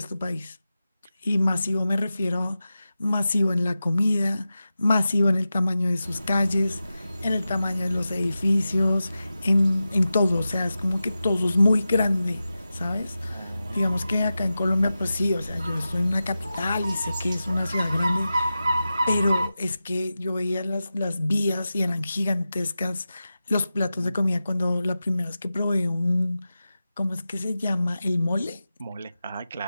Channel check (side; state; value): both; inverted; correlation -0.93